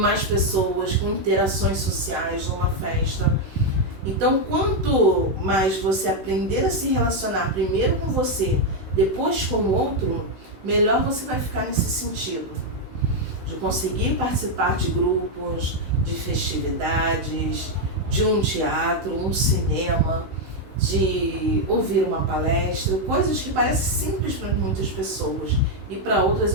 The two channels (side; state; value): left; late; 16 ms